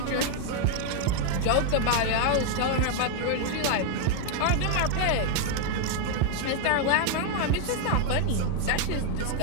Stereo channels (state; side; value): different; both; correlation 0.00